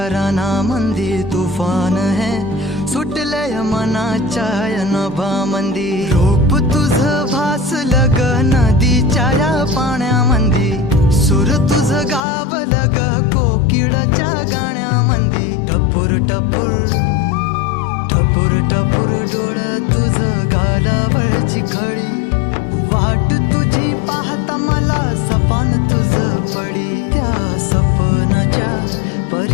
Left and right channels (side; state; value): right; drops out; at 12.2 s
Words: मंदी तुफान है सुटले मनाच्या नभामंदी रूप तुझ भासलं ग नदीच्या या पाण्यामंदी सूर तुझ गावलं ग कोकिळाच्या गाण्यामंदी टपूर टपूर टपूर टपूर डोळं तुझ गालावरची खळी वाट तुझी पाहता मला सपान तुझ पडी त्या सपनाच्या